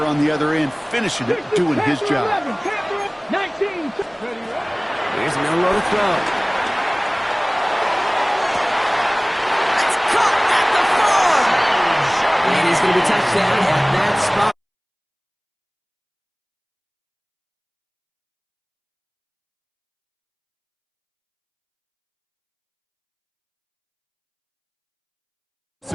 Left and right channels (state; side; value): identical; both; correlation 1.00